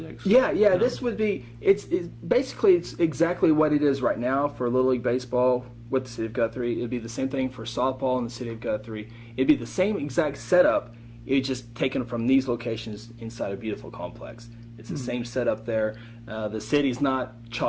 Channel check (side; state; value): both; identical; correlation 1.00